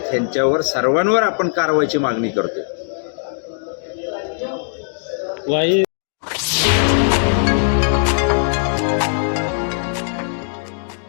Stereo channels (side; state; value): right; silent; digital silence